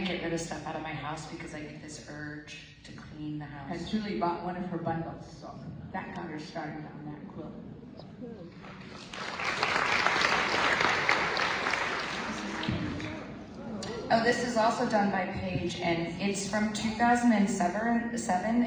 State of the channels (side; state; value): both; identical; correlation 1.00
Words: get rid of stuff out of my house because I get this urge to clean the house. And Julie bought one of her bundles, so that got her started on that quilt. Oh, this is also done by Paige, and it's from 2007,